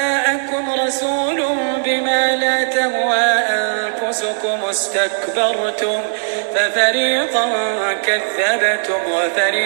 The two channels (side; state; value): left; silent; 63 dB below the other